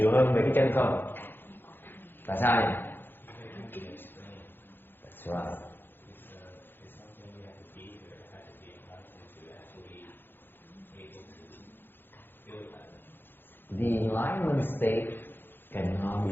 hơn về cái chân không? Tại sao vậy? That's right. The enlightenment state cannot be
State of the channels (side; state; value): right; late; 0.10 ms